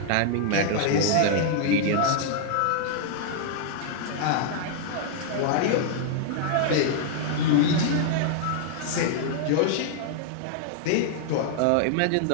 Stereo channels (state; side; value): different; both; correlation -0.01